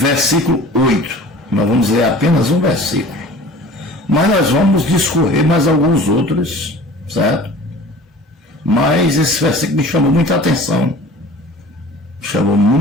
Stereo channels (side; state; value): both; normal; correlation 0.44